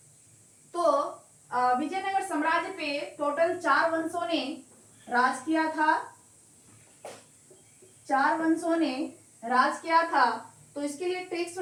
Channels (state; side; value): identical; both; correlation 1.00